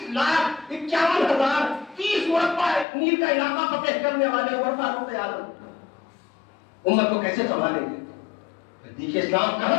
مربع میل کا علاقہ فتح کرنے والے عمر فاروق اعظم امت کو کیسے سنبھالیں گے. دیکھیے اسلام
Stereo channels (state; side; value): drops out; right; at 2.9 s